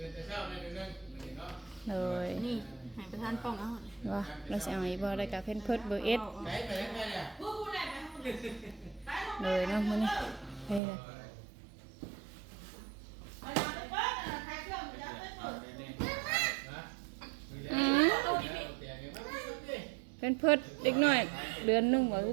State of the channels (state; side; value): drops out; left; at 10.8 s